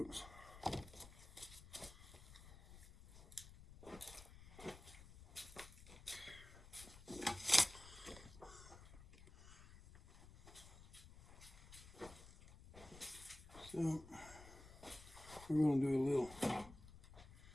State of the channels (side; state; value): left; noise; rumble, 17 dB below the sound